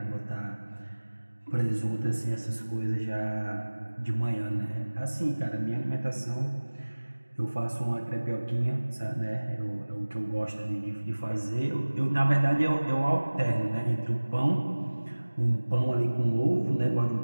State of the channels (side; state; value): both; inverted; correlation -1.00